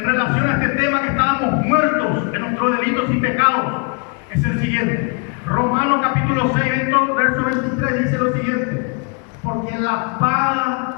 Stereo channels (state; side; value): quieter; right; 36.1 dB